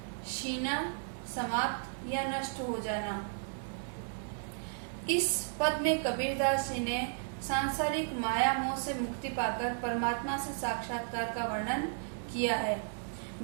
शीना समाप्त या नष्ट हो जाना। इस पद में कबीरदास जी ने सांसारिक माया मोह से मुक्ति पाकर परमात्मा से साक्षात्कार का वर्णन किया है।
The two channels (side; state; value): left; silent; digital silence